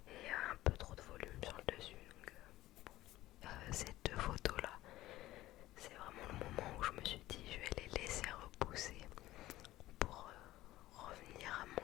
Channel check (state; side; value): quieter; right; 16.1 dB